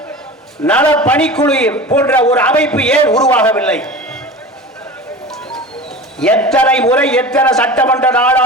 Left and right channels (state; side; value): normal; both; correlation 0.34